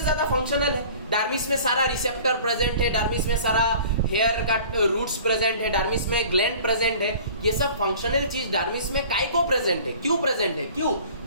ज्यादा फंक्शनल है। डर्मिस में सारा रिसेप्टर प्रेजेंट है, डर्मिस में सारा हेयर का रूट्स प्रेजेंट है, डर्मिस में ग्लैंड प्रेजेंट है। ये सब फंक्शनल चीज डर्मिस में काय को प्रेजेंट है? क्यों प्रेजेंट है? क्यों?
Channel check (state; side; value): inverted; both; correlation -0.46